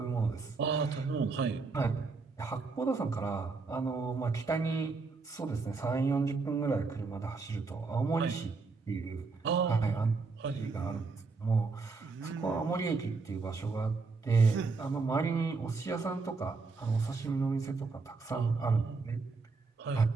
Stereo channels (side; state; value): left; quieter; 4.2 dB